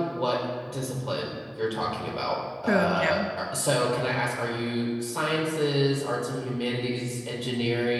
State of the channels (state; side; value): identical; both; correlation 1.00